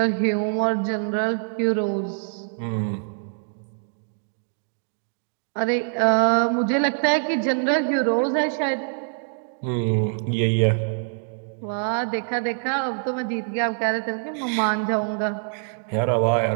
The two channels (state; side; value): silent; left; digital silence